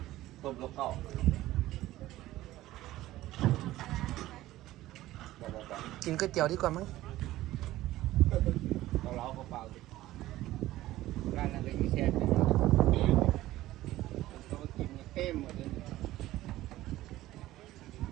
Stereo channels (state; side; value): quieter; left; 15.8 dB